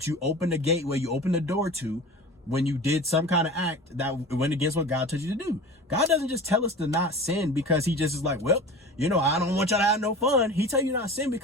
you open the gateway, you open the door to, when you did some kind of act that went against what God told you to do. God doesn't just tell us to not sin because he just is like, well, you know, I don't want y'all to have no fun. He tell you not to sin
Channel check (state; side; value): normal; both; correlation 0.36